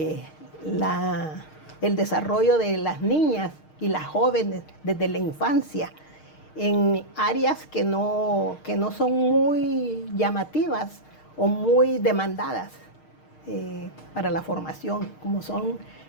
desarrollo de las niñas y las jóvenes desde la infancia en áreas que no son muy llamativas o muy demandadas para la formación, como son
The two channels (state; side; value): late; right; 6.5 ms